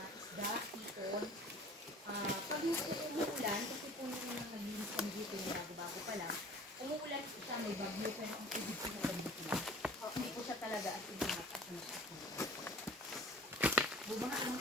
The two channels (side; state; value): both; normal; correlation 0.48